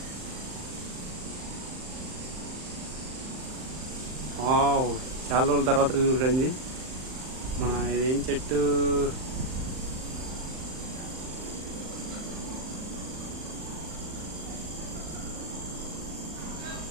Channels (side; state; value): left; late; 39 ms